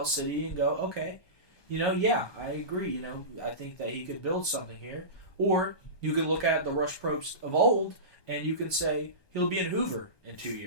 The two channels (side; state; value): right; late; 1.2 ms